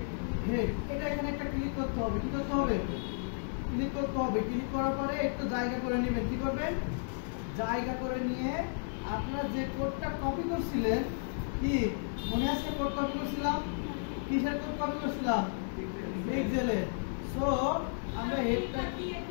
হেড। এটা এখানে একটা ক্লিক করতে হবে। কি করতে হবে? ক্লিক করতে হবে। ক্লিক করার পরে একটু জায়গা করে নেবেন। কি করবেন? জায়গা করে নিয়ে আপনারা যে কোডটা কপি করছিলেন, কি মনে আছে? কোড কপি করছিলাম, কিসের কোড কপি করছিলাম? পিক্সেলে। সো আমরা হেডটা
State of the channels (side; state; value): right; silent; 56 dB below the other